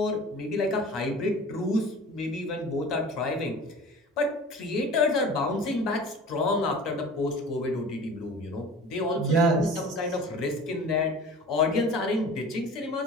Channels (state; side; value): normal; both; correlation 0.40